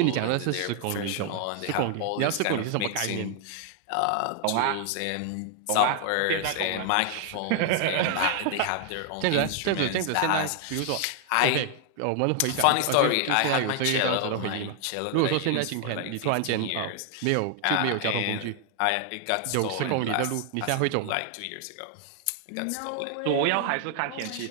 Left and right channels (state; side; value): different; both; correlation 0.00